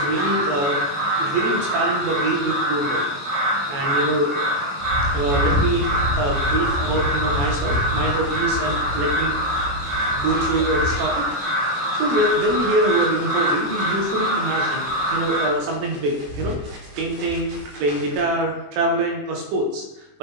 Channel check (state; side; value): late; left; 21 ms